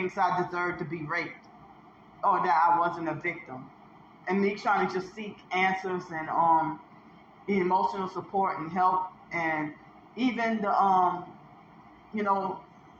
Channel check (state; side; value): identical; both; correlation 1.00